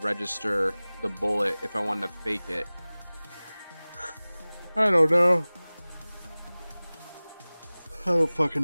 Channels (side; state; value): both; inverted; correlation -0.99